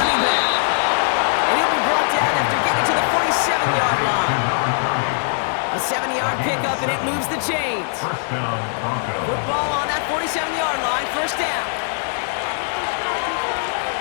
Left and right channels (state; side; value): silent; right; digital silence